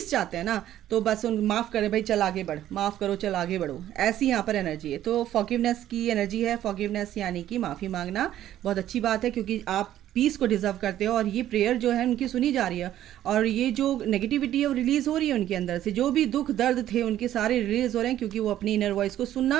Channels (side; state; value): left; quieter; 12.3 dB